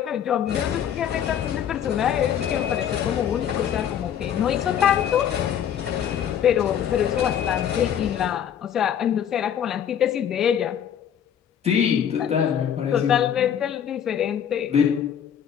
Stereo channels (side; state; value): right; quieter; 9.1 dB